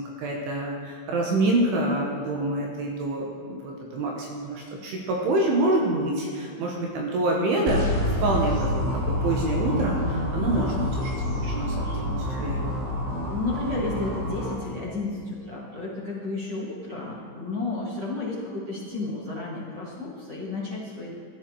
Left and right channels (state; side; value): late; left; 15 ms